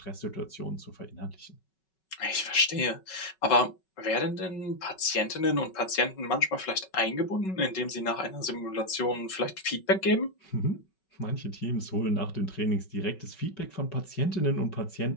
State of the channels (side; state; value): right; late; 5.3 ms